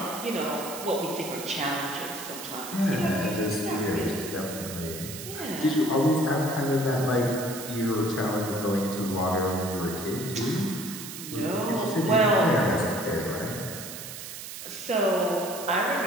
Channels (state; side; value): noise; right; hiss, 10 dB below the sound